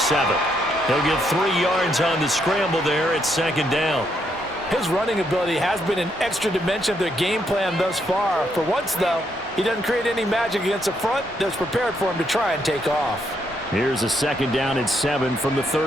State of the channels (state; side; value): normal; both; correlation 0.76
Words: He'll get 3 yards on the scramble there at 2nd down. His running ability has been an extra dimension of their game plan thus far. For once, though, he doesn't create any magic against the front that's prepared for him to try and take off. Here's a 2nd down and 7 from the